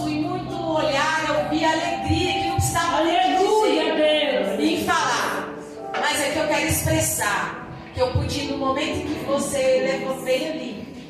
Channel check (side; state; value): both; identical; correlation 1.00